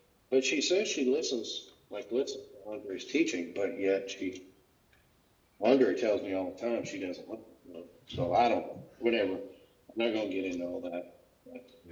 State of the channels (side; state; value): both; identical; correlation 1.00